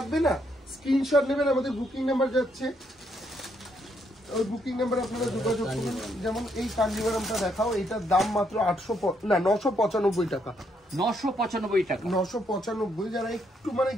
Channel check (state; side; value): normal; both; correlation 0.74